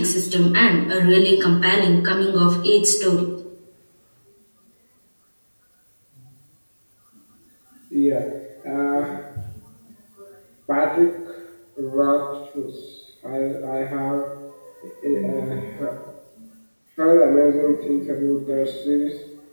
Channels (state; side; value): inverted; both; correlation -1.00